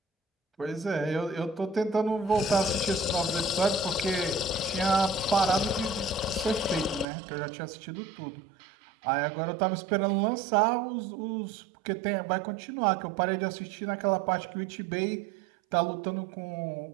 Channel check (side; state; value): left; drops out; at 7.1 s